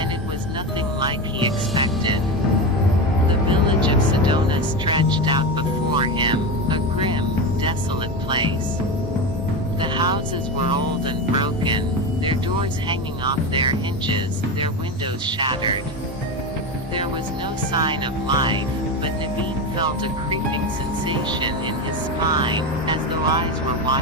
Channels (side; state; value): both; normal; correlation 0.19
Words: it was nothing like he expected. The village of Sedona stretched out before him, a grim, desolate place. The houses were old and broken, their doors hanging off their hinges, their windows shattered. There was no sign of life, but Naveen felt a creeping sensation in his spine, as though eyes were